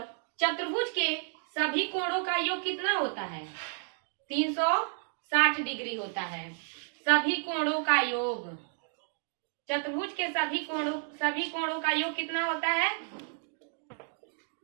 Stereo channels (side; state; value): left; silent; 57 dB below the other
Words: चतुर्भुज के सभी कोणों का योग कितना होता है, 360 डिग्री होता है। सभी कोणों का योग, चतुर्भुज के सभी कोणों का योग कितना होता है,